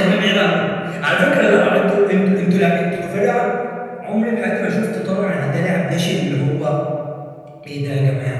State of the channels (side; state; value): both; identical; correlation 1.00